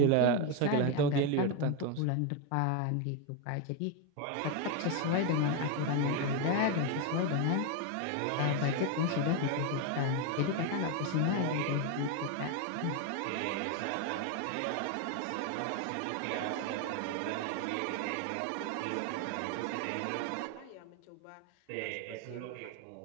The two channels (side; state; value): both; different; correlation 0.02